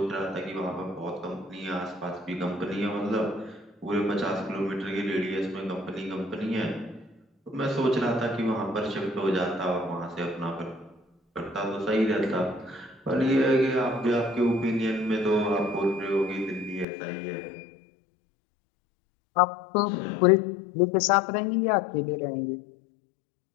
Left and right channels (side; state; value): right; drops out; at 16.9 s